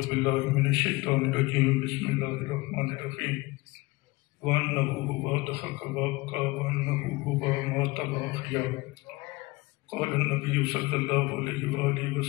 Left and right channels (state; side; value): quieter; right; 22.5 dB